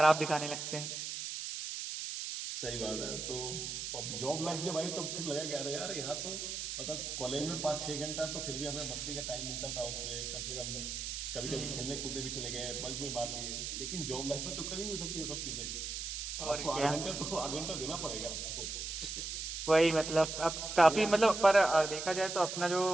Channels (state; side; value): noise; right; hiss, 5 dB below the sound